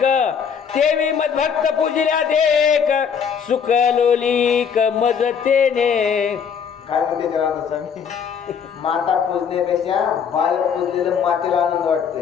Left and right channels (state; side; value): quieter; right; 7.1 dB